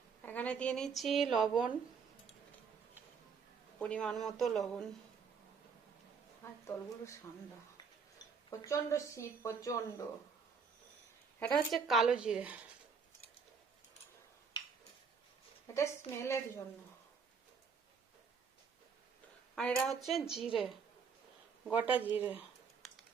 এখানে দিয়ে নিচ্ছি লবণ, পরিমাণ মতো লবণ। আর তলগুলো ঠান্ডা, প্রচন্ড শীত, প্রচন্ড। এটা হচ্ছে কালো জিরে, এটা স্মেলের জন্য। আর এটা হচ্ছে জিরে, গোটা জিরে।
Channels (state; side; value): quieter; left; 5.8 dB